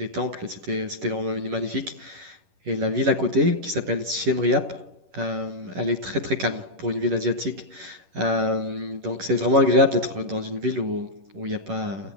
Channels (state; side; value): late; left; 11 ms